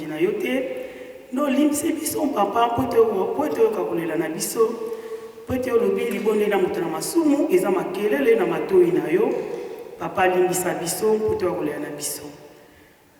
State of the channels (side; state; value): both; identical; correlation 1.00